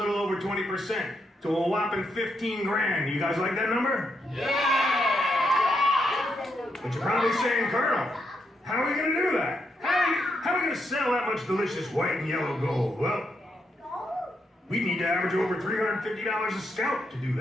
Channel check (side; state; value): both; normal; correlation 0.80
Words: over 20%, to a whopping 15 grand. You guys like that number? Yeah! But you're probably saying, Colonel, how are we going to do that? How are we going to sell that much delicious white and yellow gold? Well, we need to average over $350 a scout to do